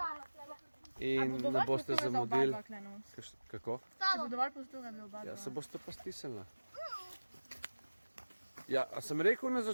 in ne boste zamudili. Kako? Če bo dovolj prostora, bi oba dva. Ja, se boste pa stisnili. Ja, a sem rekel na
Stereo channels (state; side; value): inverted; both; correlation -1.00